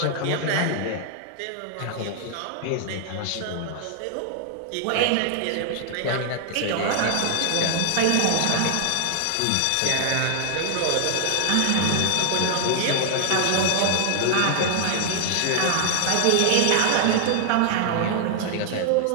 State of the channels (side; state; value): both; different; correlation 0.00